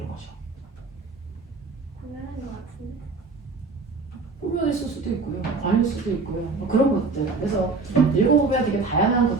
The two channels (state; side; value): quieter; left; 4.0 dB